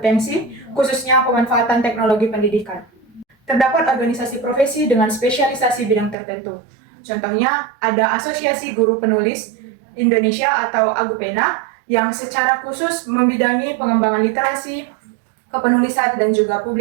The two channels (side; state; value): left; drops out; at 6.2 s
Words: khususnya pemanfaatan teknologi pendidikan. terdapat organisasi profesi dengan spesialisasi bidang tertentu. Contohnya, ada Asosiasi Guru Penulis Indonesia atau AGUPENA yang secara khusus membidangi pengembangan literasi, kepenulisan, dan juga